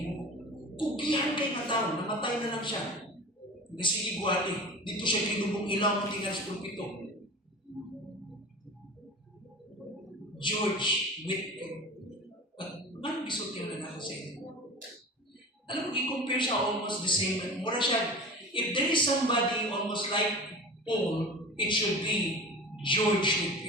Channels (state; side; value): normal; both; correlation 0.35